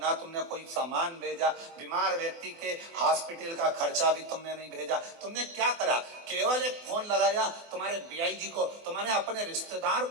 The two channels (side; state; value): left; late; 24 ms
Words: तुमने कोई सामान भेजा, बीमार व्यक्ति के हॉस्पिटल का खर्चा भी तुमने नहीं भेजा। तुमने क्या करा? केवल एक फोन लगाया तुम्हारे बीआई जी को, तुम्हारे अपने रिश्तेदार